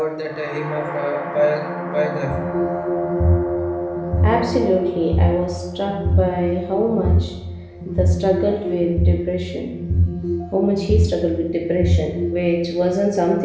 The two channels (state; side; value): identical; both; correlation 1.00